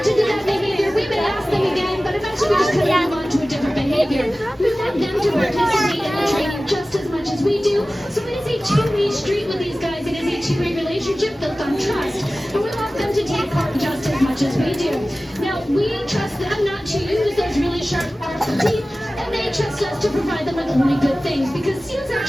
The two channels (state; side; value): normal; both; correlation 0.97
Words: to do that behavior, we may ask them again, but eventually we just kind of move on to a different behavior. We want them to participate in the training just as much as we do. So it is a two-way street with these guys. It is a two-way relationship built on trust. But we want them to take part just as much as we do. Now, we trust them not to use those really sharp, powerful teeth, and they trust us to provide them with only good things, because seals